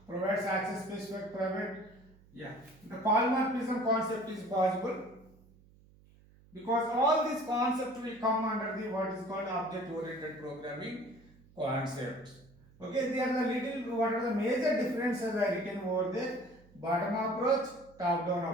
provides access specific private. Yeah. The polymorphism concept is possible, because all these concepts will come under the what is called object oriented programming concepts. Okay, they are the little, what are the major differences I written over there. Bottom approach, top down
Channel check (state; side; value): noise; right; hum, 26 dB below the sound